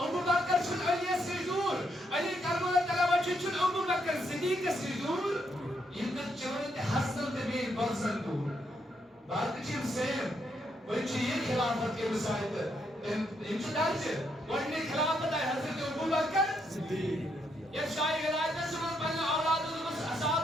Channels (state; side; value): normal; both; correlation 0.77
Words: Bakr şun Ali'ye secdur Ali Karamallah Teala vacib şun Abu Bakr Siddiq'e secdur Yıldır çevrede Hasan Tebi Balsan dur Bakıcım Seyim وچ یہ خلافت کے مسائل امتدار سے وڑنے خلافت ہے حضرت ابو بکر صدیق یہ شاہی ولایت سمجھ پہنے اولاد اس